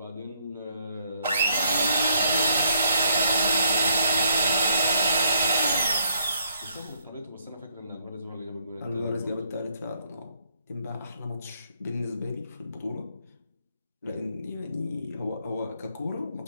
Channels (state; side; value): inverted; both; correlation -0.71